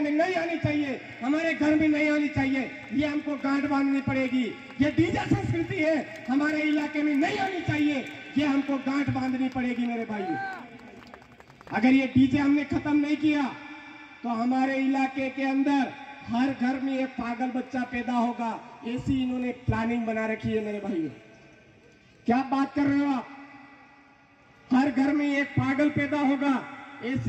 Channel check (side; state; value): both; identical; correlation 1.00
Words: में नहीं आनी चाहिए, हमारे घर में नहीं आनी चाहिए, ये हमको गांठ बांधनी पड़ेगी। ये डीजे संस्कृति है, हमारे इलाके में नहीं आनी चाहिए, ये हमको गांठ बांधनी पड़ेगी मेरे भाइयों। अगर ये डीजे हमने खत्म नहीं किया तो हमारे इलाके के अंदर हर घर में एक पागल बच्चा पैदा होगा, ऐसी इन्होंने प्लानिंग बना रखी है मेरे भाइयों। क्या बात कर रहे हो आप? हर घर में एक पागल पैदा होगा,